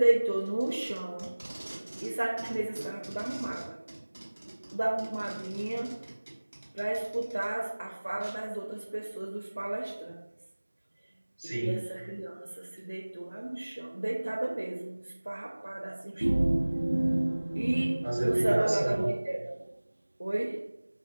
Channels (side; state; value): both; inverted; correlation -1.00